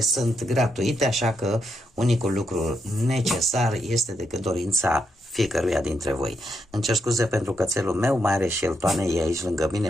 gratuite, așa că unicul lucru necesar este decât dorința fiecăruia dintre voi. Îmi cer scuze pentru cățelul meu, mai are și el toane, e aici lângă mine,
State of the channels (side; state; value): both; normal; correlation 0.81